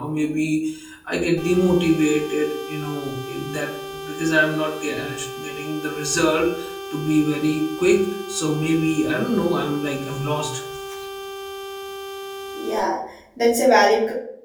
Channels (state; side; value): identical; both; correlation 1.00